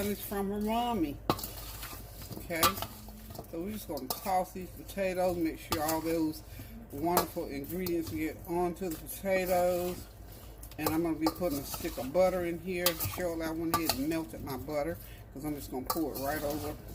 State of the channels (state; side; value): identical; both; correlation 1.00